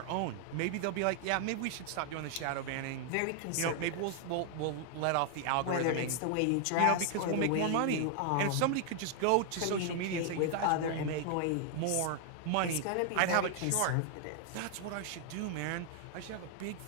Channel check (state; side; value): different; both; correlation 0.00